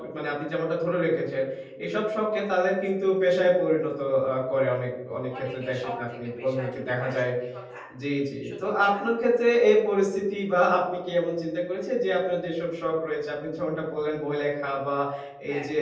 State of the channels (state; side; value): identical; both; correlation 1.00